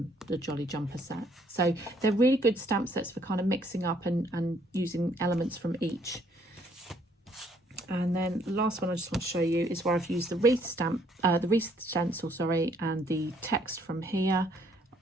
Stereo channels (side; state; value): both; normal; correlation 0.66